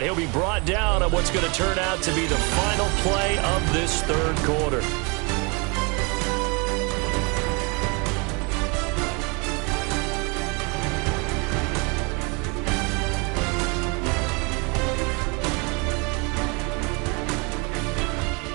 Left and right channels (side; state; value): left; quieter; 30.9 dB